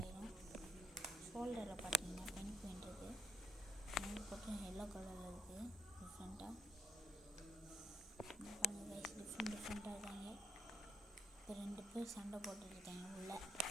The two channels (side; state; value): both; normal; correlation 0.71